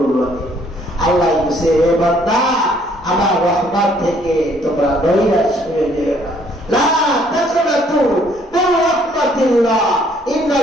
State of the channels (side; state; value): both; normal; correlation 0.63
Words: রহিম। আল্লাহ বলেছে, হে বান্দা, আমার রহমত থেকে তোমরা নৈরাশ হয়ে যেও না। লা তাকনাতু মির রাহমাতিল্লাহ